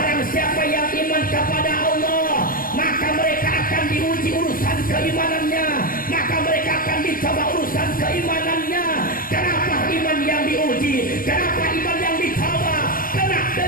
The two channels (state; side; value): late; right; 0.41 ms